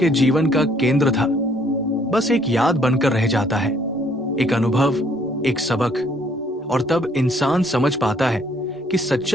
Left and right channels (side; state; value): both; normal; correlation 0.63